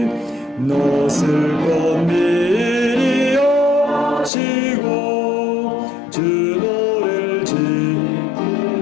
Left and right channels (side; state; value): right; drops out; at 4.3 s